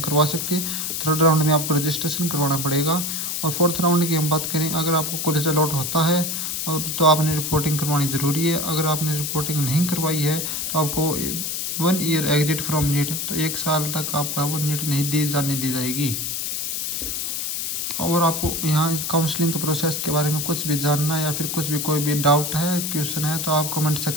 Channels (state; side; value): noise; left; hiss, 2 dB below the sound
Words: करवा सकते। थर्ड राउंड में आपको रजिस्ट्रेशन करवाना पड़ेगा। और फोर्थ राउंड की हम बात करें, अगर आपको कॉलेज अलॉट होता है और तो आपने रिपोर्टिंग करवानी ज़रूरी है। अगर आपने रिपोर्टिंग नहीं करवाई है तो आपको 1 ईयर एग्जिट फ्रॉम नीट, तो 1 साल तक आपका वो नीट नहीं दी जाएगी। और आपको यहाँ काउंसलिंग के प्रोसेस के बारे में कुछ भी जानना है या फिर कुछ भी कोई भी डाउट है, क्वेश्चन है तो आप कमेंट